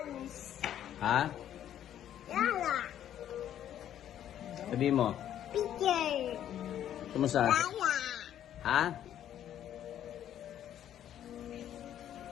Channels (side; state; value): right; quieter; 10.8 dB